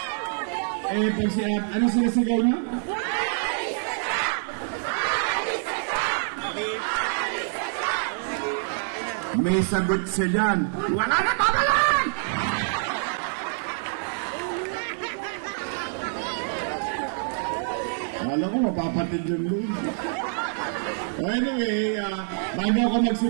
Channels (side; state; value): left; silent; 61 dB below the other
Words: Pag ano sinasigaw niyo? May sagot siya dyan. Wala na babalan! Alam ko, mapapatid yung load. Anyway, bago ako